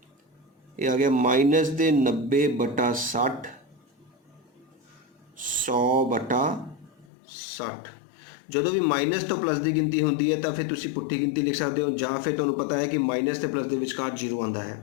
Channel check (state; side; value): drops out; right; at 7.1 s